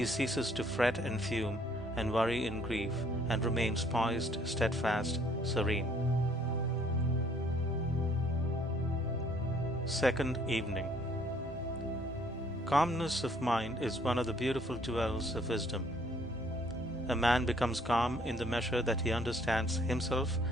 ceases to fret and fume and worry and grieve, and remains poised, steadfast, serene. Second evening. Calmness of mind is one of the beautiful jewels of wisdom. A man becomes calm in the measure that he understands himself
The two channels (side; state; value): both; normal; correlation 0.62